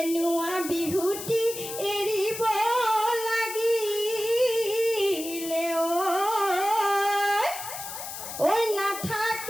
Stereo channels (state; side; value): noise; left; hiss, 9 dB below the sound